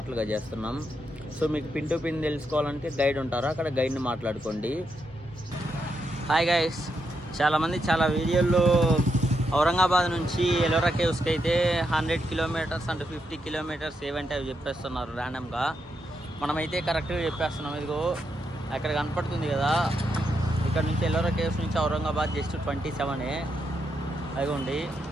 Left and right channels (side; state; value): both; normal; correlation 0.82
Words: చేస్తున్నాం. సో మీకు పిన్ టు పిన్ తెలుసుకోవాలంటే గైడ్ ఉంటారు, అక్కడ గైడ్ని మాట్లాడుకోండి. హాయ్ గైస్, చాలామంది చాలా వీడియోల్లో ఔరంగాబాద్ నుంచి ఎల్లోరా కేవ్స్కి అయితే 100 కిలోమీటర్స్ అంటే 50 కిలోమీటర్స్ ఏవంటే అవి చెప్పేస్తున్నారు ర్యాండమ్గా. మనమైతే కరెక్ట్గా చెప్పేస్తున్నాం. ఇదిగో అక్కడ కనపడుతుంది కదా, ఇక్కడ నుంచి ఎల్లోరా కేవ్స్ నుంచి ఔరంగాబాద్ జస్ట్ 27. అదిగోండి.